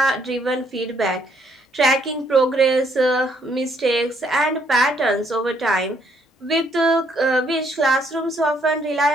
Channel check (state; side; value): normal; both; correlation 0.69